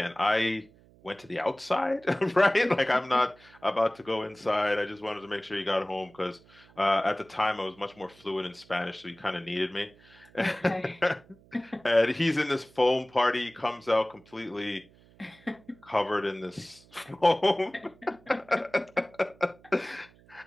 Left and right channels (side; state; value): right; noise; hum, 27 dB below the sound